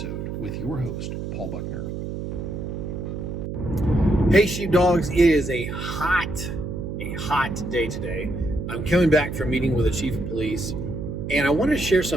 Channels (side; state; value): right; noise; hum, 6 dB below the sound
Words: with your host, Paul Buckner. Hey sheepdogs, it is a hot day today. I'm coming back from meeting with the chief of police, and I want to share